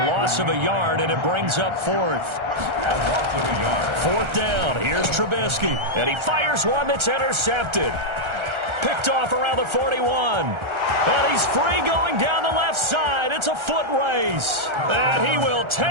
loss of a yard, and it brings up 4th. 4th down. Here's Trubisky. And he fires one that's intercepted. Picked off around the 41. And he's free going down the left side. It's a foot race. And he will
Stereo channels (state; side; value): late; left; 1.3 ms